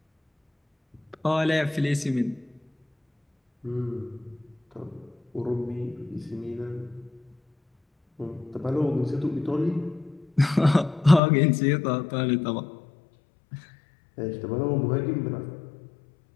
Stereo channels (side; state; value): right; drops out; at 11.2 s